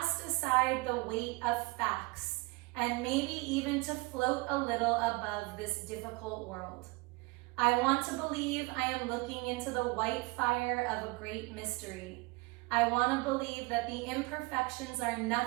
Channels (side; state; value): left; quieter; 25.8 dB